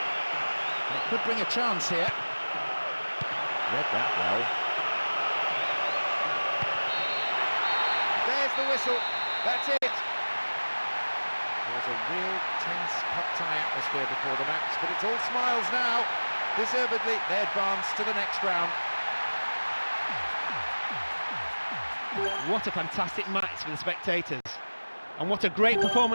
And it could bring a chance here. Read that well. There's the whistle. That's it. There was a real tense cup-tie atmosphere before the match, but it's all smiles now. Deservedly, they advance to the next round. What a fantastic match for the spectators. And what a great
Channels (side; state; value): both; inverted; correlation -1.00